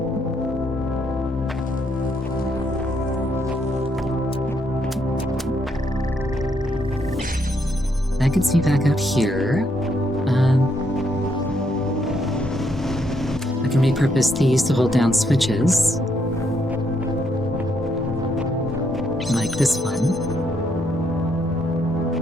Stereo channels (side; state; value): both; normal; correlation 0.74